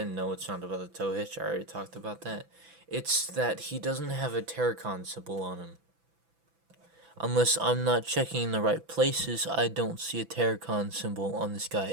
no, it's not about the tow hitch. I already talked about that. It's that he doesn't have a Terracon symbol on him. Unless I'm not checking the right places, I don't see a Terracon symbol on this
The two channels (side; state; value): left; late; 6.0 ms